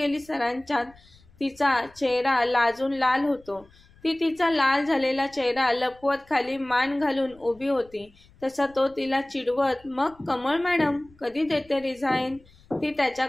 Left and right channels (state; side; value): noise; left; rumble, 27 dB below the sound